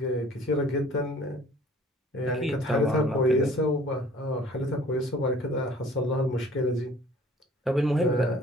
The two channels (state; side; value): normal; both; correlation 0.51